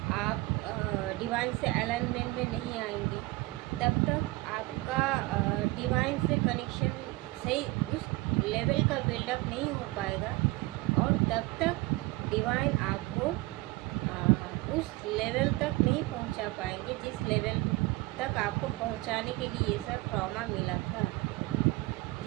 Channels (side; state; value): left; quieter; 21.3 dB